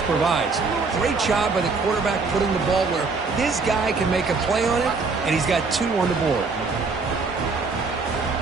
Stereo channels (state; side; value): quieter; left; 4.3 dB